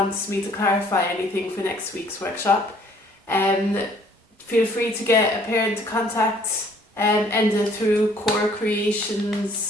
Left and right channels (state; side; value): normal; both; correlation 0.59